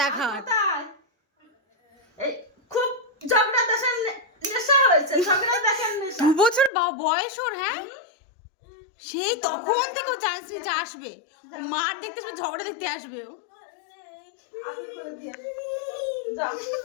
দেখার। কোথায়? এই খুব ঝগড়া দেখার নেশা হয়েছে, ঝগড়া দেখার নেশা। 2 বছর বয়স ওর, হ্যাঁ সেই তখন থেকে ও চান্স নিচে আসবে, ও মার দেখতে আসবে, ঝগড়া দেখতে আসবে ও। আদর করে দিয়ে যাও,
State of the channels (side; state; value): right; drops out; at 6.7 s